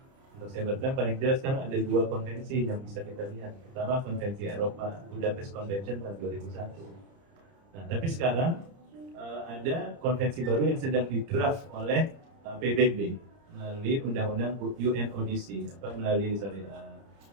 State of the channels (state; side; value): late; left; 30 ms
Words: Untuk cybercrime paling jelas sekarang ada 2 konvensi yang bisa kita lihat. Pertama konvensi Eropa, Budapest Convention tahun 2001. Nah, tapi sekarang ada konvensi baru yang sedang didraft oleh PBB melalui undang-undang UNODC, melalui